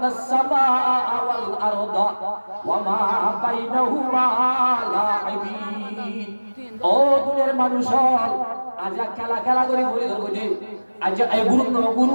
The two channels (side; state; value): both; inverted; correlation -1.00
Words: সামাআ ওয়াল আরদা ওয়া মা বাইনাহুমা লাইবিন, ও দুনিয়ার মানুষ আজ খেলা খেলা করে ঘুরে ধরবো যে আজ এই গুরু